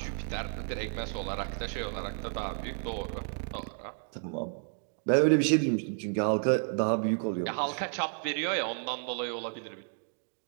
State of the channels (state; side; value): silent; left; 57 dB below the other